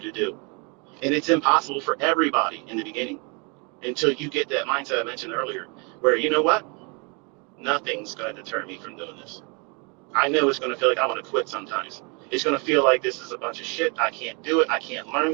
do. And it's impossible for everybody in the beginning. until you get that mindset I mentioned earlier, where you know what? Nothing's going to deter me from doing this. I know it's going to feel like I want to quit sometimes. It's going to feel like this is a bunch of shit. I can't do it. I can't learn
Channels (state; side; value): quieter; left; 32.4 dB